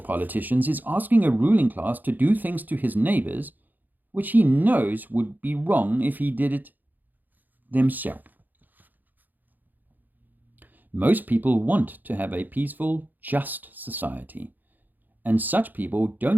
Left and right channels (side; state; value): left; late; 0.085 ms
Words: politicians is asking a ruling class to do things to his neighbors which he knows would be wrong if he did it themselves. Most people want to have a peaceful, just society, and such people